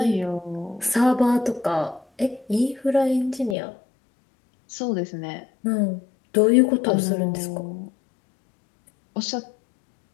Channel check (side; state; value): right; drops out; at 3.6 s